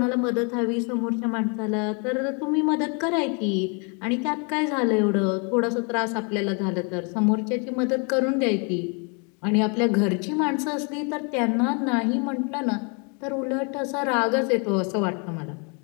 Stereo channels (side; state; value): right; quieter; 35.5 dB